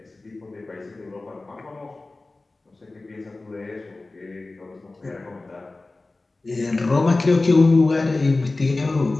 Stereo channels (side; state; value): right; quieter; 3.2 dB